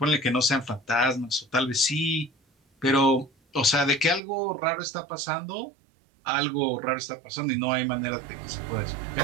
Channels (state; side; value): drops out; left; at 4.2 s